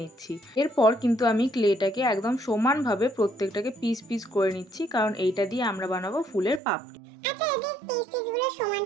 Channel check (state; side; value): drops out; left; at 6.6 s